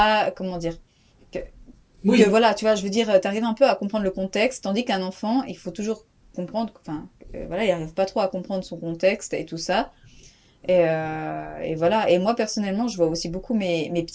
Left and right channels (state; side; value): identical; both; correlation 1.00